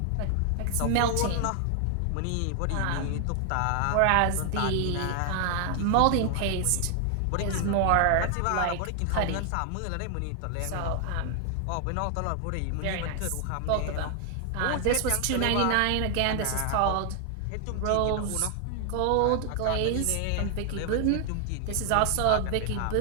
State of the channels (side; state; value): both; different; correlation 0.00